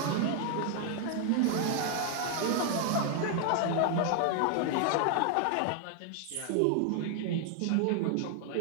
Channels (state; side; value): different; both; correlation 0.00